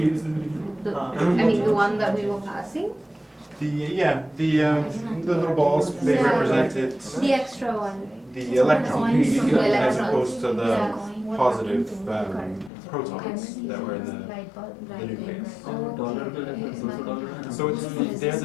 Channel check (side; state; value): right; drops out; at 12.7 s